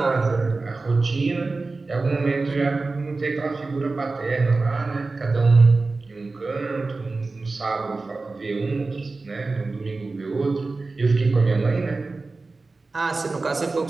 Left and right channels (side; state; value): left; quieter; 3.7 dB